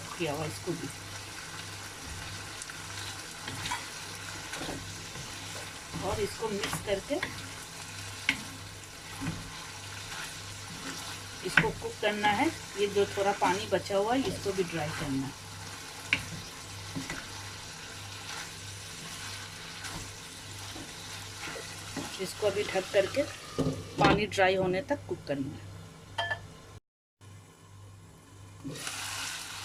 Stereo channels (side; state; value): both; identical; correlation 1.00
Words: किया हुआ, इसको भी। और इसको मिक्स करके इसको कुक करना है। ये जो थोड़ा पानी बचा हुआ है इसको भी ड्राई करना है। इसको अभी ढक करके पानी ड्राई होने तक कुक करना है।